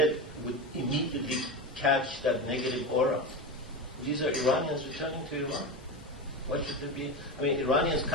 would immediately catch that negative aura. These are Iranians returning to Iran. What should there be? I mean, Iranians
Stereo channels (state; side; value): normal; both; correlation 0.20